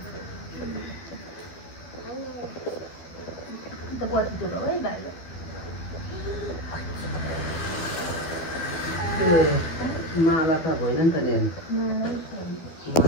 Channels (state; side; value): late; right; 12 ms